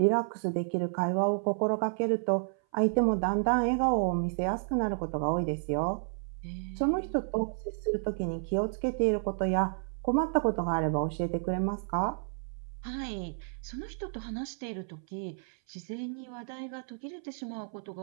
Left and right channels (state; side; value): silent; left; 57 dB below the other